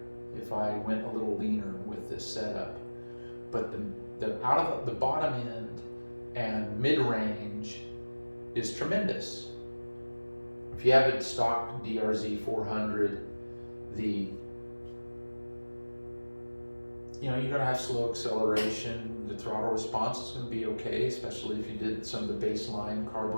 if I went a little leaner with this setup. But the out of the bottom end and mid-range is tremendous. If you have a stock DRZ 400, you're going to have slow acceleration. The throttle response is going to be okay, especially if you did some of the baseline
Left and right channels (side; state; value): both; inverted; correlation -1.00